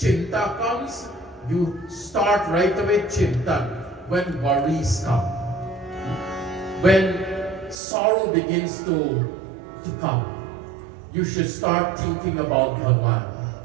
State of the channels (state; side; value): drops out; left; at 7.8 s